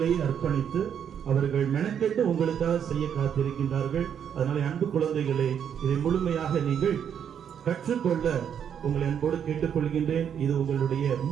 அர்ப்பணித்து அவர்கள் மெனக்கெட்டு உங்களுக்காக செய்ய காத்திருக்கின்றார்கள். அதனால அன்பு குழந்தைகளே, இதை முழுமையாக நீங்கள் கற்றுக்கொள்ள உங்களை அன்போடு கேட்டுக்கொள்கின்றேன். இது உங்களுடைய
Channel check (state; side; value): quieter; left; 8.4 dB